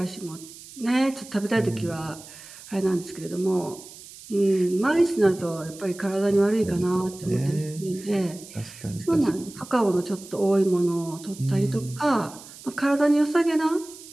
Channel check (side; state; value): right; noise; hiss, 17 dB below the sound